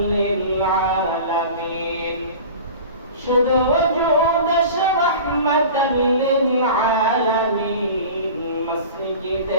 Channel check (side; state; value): both; inverted; correlation -0.37